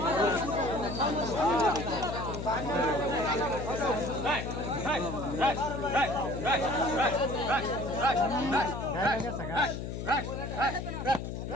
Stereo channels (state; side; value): noise; left; hum, 5 dB below the sound